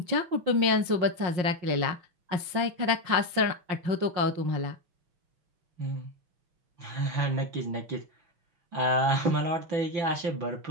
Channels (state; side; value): late; left; 5.7 ms